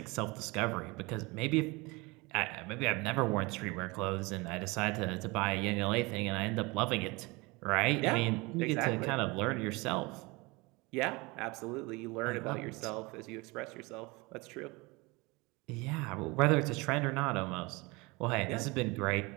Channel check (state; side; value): quieter; left; 24.9 dB